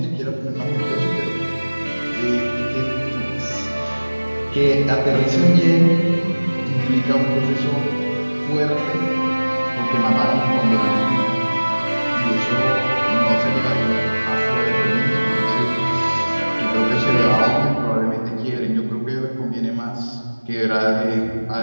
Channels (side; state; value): both; inverted; correlation -1.00